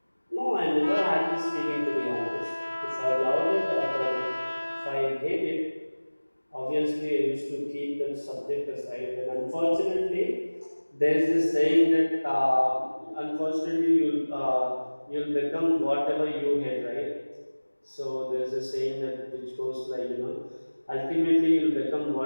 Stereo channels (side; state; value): both; inverted; correlation -1.00